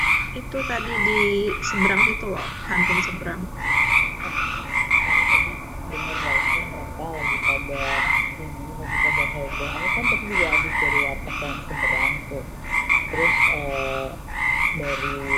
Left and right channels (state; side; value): identical; both; correlation 1.00